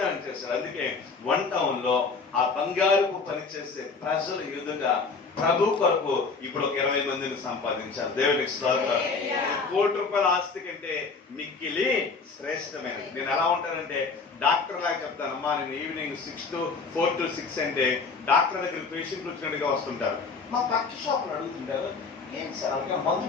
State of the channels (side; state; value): right; quieter; 4.6 dB